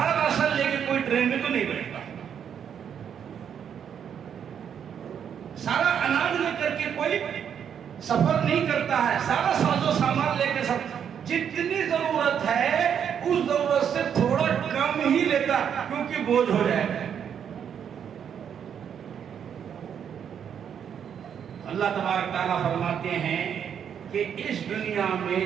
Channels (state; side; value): quieter; left; 8.2 dB